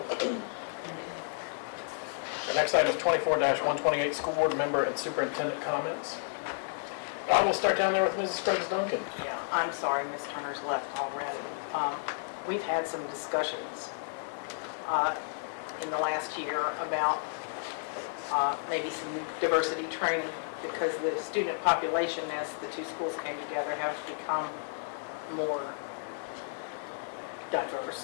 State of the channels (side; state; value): right; silent; digital silence